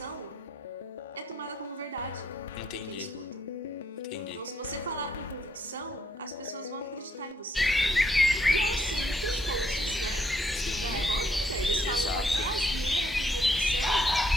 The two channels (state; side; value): normal; both; correlation 0.71